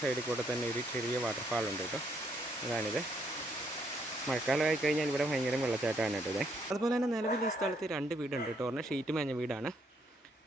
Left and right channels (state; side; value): normal; both; correlation 0.72